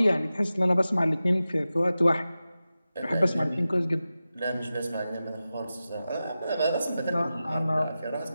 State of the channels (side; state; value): both; inverted; correlation -0.94